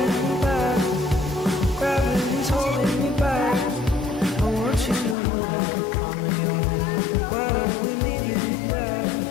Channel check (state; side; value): drops out; right; at 5.2 s